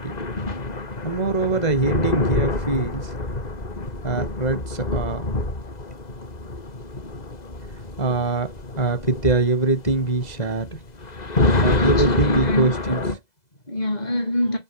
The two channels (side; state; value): right; late; 2.0 ms